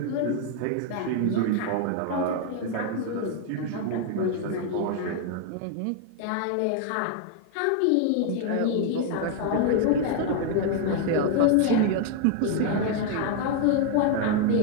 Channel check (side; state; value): both; different; correlation 0.00